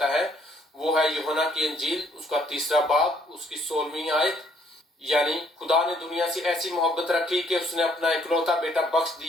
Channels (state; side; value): normal; both; correlation 0.66